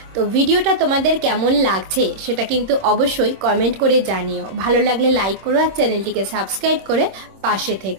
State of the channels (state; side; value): late; left; 26 ms